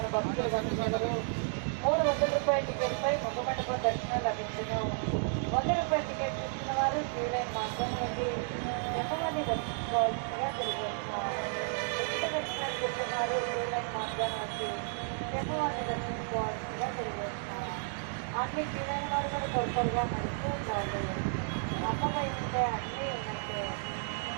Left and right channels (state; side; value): silent; left; 56 dB below the other